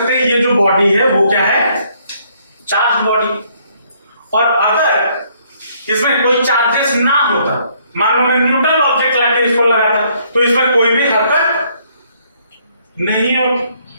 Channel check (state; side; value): inverted; both; correlation -0.67